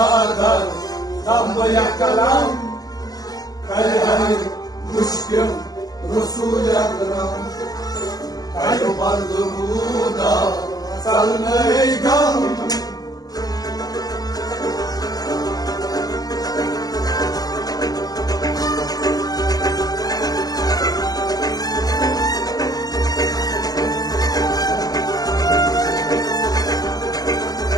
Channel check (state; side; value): late; right; 0.18 ms